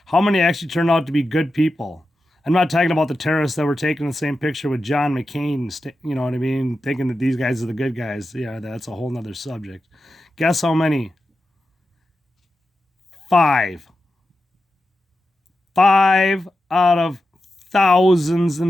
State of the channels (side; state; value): both; normal; correlation 0.91